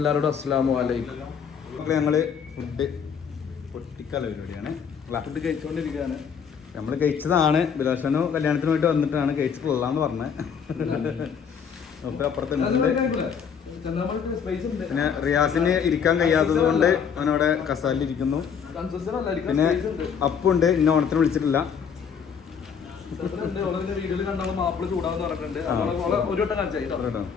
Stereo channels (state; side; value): quieter; right; 7.0 dB